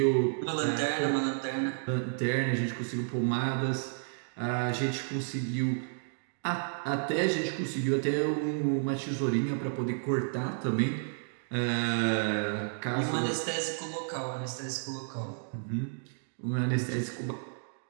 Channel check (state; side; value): silent; left; digital silence